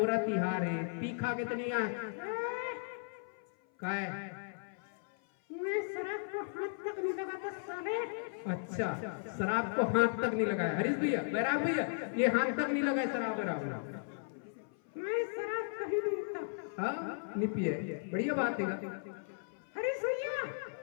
तिहार है, पीखा कितनी है? काय? मैं शराब को हाथ तक नहीं लगाता साले। अच्छा, शराब को हाथ तक नहीं लगाया हरीश भैया, बैराग भैया, ये हाथ तक नहीं लगाया शराब बराबर। मैं शराब कहीं नहीं पीता। हाँ, नहीं पिए, बढ़िया बात है हरीश भैया।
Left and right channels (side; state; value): right; silent; 54 dB below the other